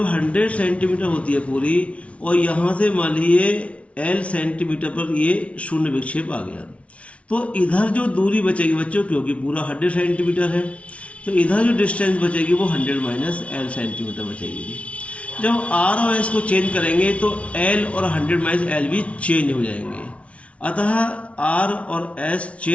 100 सेंटीमीटर होती है पूरी, और यहाँ से मान लीजिए एल सेंटीमीटर पर ये शून्य विक्षेप आ गया, तो इधर जो दूरी बचेगी बच्चों, क्योंकि पूरा 100 सेंटीमीटर है, तो इधर जो डिस्टेंस बचेगी वो 100 माइनस एल सेंटीमीटर बचेगी। जब आर और एस को चेंज करेंगे तो एल और 100 माइनस एल भी चेंज हो जाएंगे। अतः आर और एस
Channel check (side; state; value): right; late; 0.063 ms